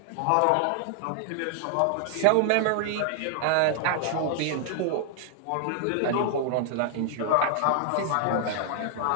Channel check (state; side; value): different; both; correlation 0.00